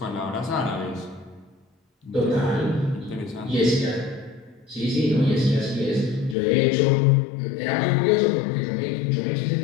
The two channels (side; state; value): right; drops out; at 6.4 s